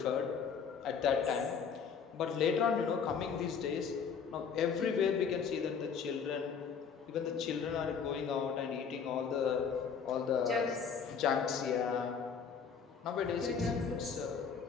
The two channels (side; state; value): right; quieter; 6.4 dB